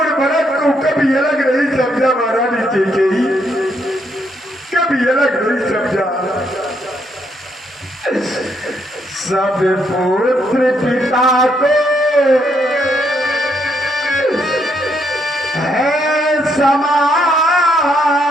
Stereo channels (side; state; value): both; normal; correlation 0.75